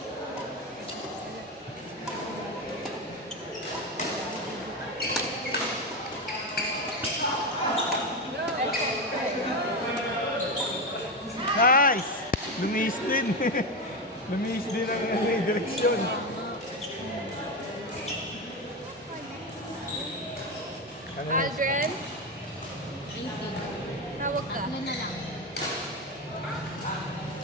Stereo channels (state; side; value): normal; both; correlation 0.15